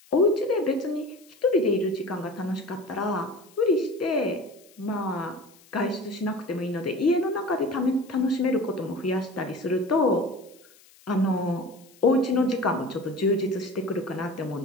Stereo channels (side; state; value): left; noise; hiss, 27 dB below the sound